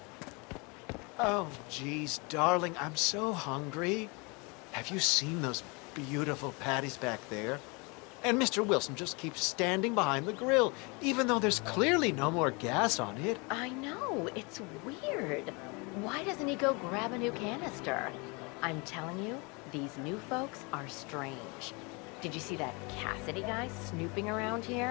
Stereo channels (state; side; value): quieter; right; 29.4 dB